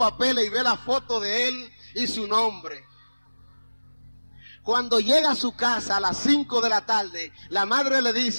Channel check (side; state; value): both; inverted; correlation -1.00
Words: y ve la foto de él y su nombre. Cuando llega a su casa a las 5 de la tarde, la madre le